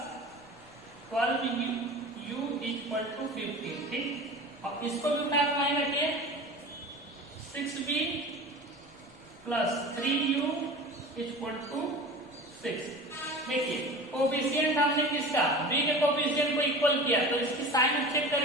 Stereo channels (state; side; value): noise; left; rumble, 29 dB below the sound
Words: 12u equal to 15। ठीक, अब इसको भी उठा के वहीं रखिए, 6b plus 3u equal to 6। देखिए कोफिशिएंट हमने किसका b के कोफिशिएंट को इक्वल किया तो इसकी साइन चेक